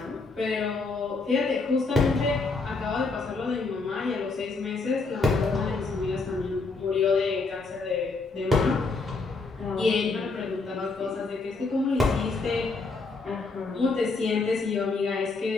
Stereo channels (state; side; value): quieter; right; 3.9 dB